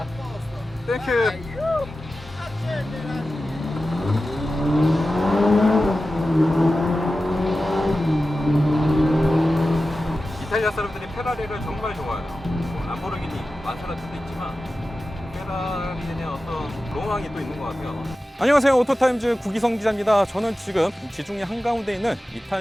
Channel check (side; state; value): both; normal; correlation 0.94